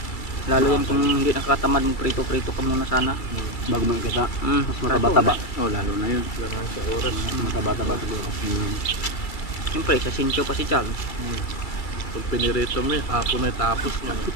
Lalo yan kung hindi nakakatamad magprito-prito ka muna sana. Bago mo kita. Mas mataba-taba. Oh, lalo na yun. Kailangan sa oras. Mataba-taba siguro. Siyempre, sa Sincho pa si Chal. Pag pinirito mo hapon na tapos mo.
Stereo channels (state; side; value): late; right; 2.3 ms